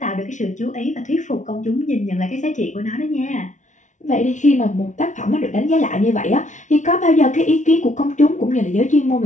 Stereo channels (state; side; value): late; right; 0.36 ms